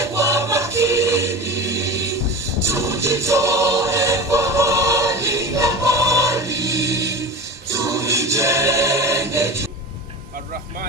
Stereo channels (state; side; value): normal; both; correlation 0.32